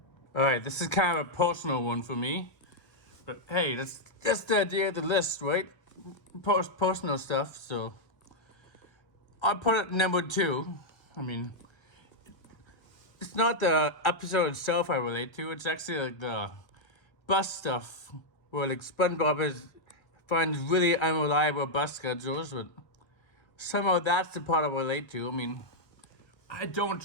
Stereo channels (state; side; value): late; right; 1.3 ms